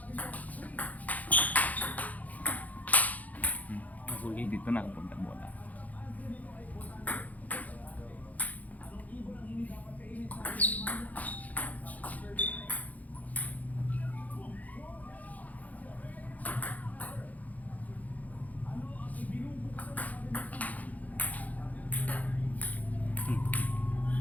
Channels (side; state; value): right; late; 0.077 ms